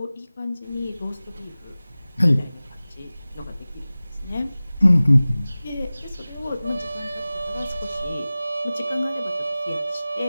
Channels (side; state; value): both; inverted; correlation -0.98